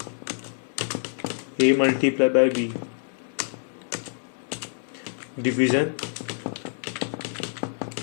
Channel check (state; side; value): silent; right; digital silence